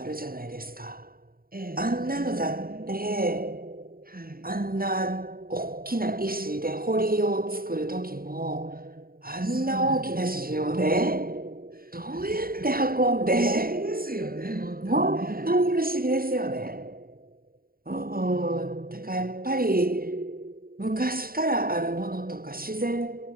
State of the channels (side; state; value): left; late; 0.43 ms